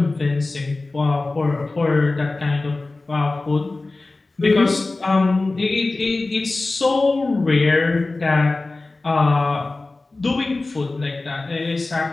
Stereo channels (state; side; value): quieter; right; 3.3 dB